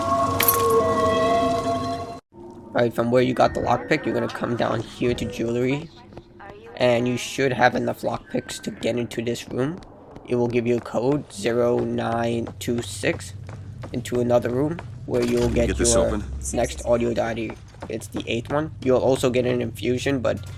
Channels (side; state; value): both; identical; correlation 1.00